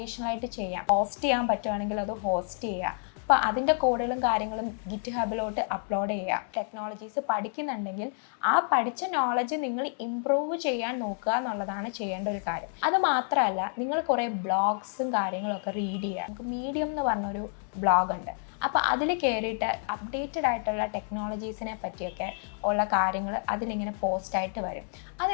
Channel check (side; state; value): right; silent; 55 dB below the other